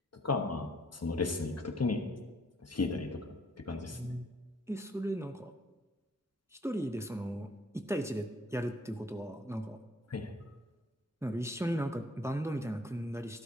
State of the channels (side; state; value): both; normal; correlation 0.63